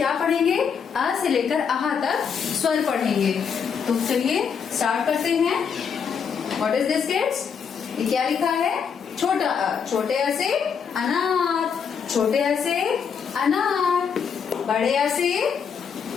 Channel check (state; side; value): quieter; right; 6.8 dB